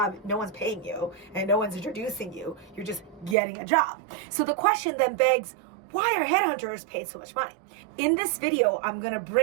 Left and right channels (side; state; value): left; drops out; at 3.4 s